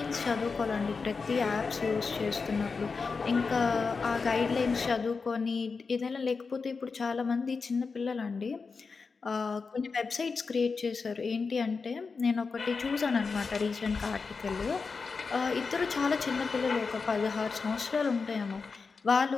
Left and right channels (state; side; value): quieter; right; 4.8 dB